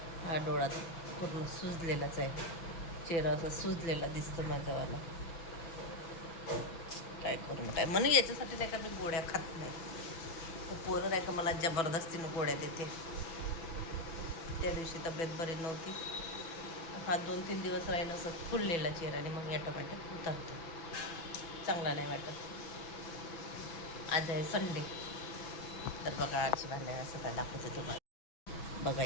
हा डोळा तर पूर्ण सुजलेलाच आहे. चेहरा असा सुजलेला दिसतो माझ्यावाला. काय करून काय म्हणून याच्यासाठी नाही का मी गोळ्या खात नाही. तर पोरं नाही का मला जबरदस्तीनं गोळ्या देते. त्या दिवशी तब्येत बरी नव्हती. हा 2-3 दिवस राहीन असं फुललेला चेहरा आणि मग ऑटोमॅटिक उतरतो. चांगला नाही वाटत. आज आहे संडे. तर बघा आरची भांडे घासत आहे, दाखवते तुम्हाला. बघा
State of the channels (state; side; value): late; right; 6.1 ms